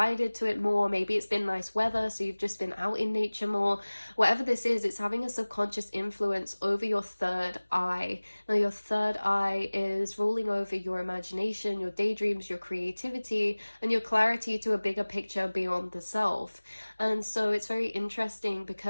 to it more. Maybe it's been nice weather, so you've just been out in nature more. Whatever this is, it's having a subconscious influence over your third eye. Now, your third eye is ruling over your imagination, your daydreams, your creativity, and your clarity to a bigger picture beyond the self. And so it's very interesting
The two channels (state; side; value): inverted; both; correlation -1.00